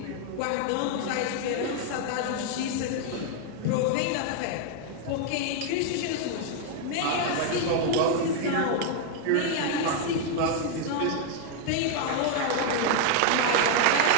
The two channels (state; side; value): different; both; correlation 0.00